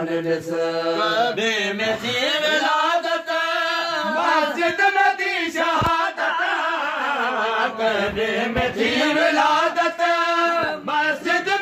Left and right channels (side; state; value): both; identical; correlation 1.00